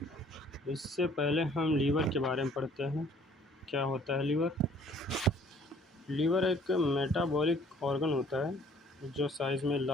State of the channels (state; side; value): normal; both; correlation 0.57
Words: इससे पहले हम लीवर के बारे में पढ़ते हैं। क्या होता है लीवर? लीवर एक मेटाबॉलिक ऑर्गन होता है जो साइज़ में